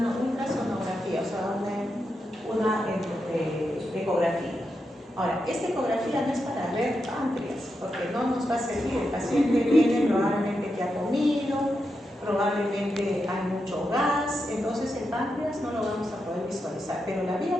ultrasonografía, o sea, una ecografía. Ahora, esta ecografía no es para ver páncreas, porque no nos va a servir. El paciente viene probablemente que ha comido, probablemente hay mucho gas, entonces el páncreas no lo vamos a poder visualizar, pero la vía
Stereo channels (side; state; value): both; normal; correlation 0.86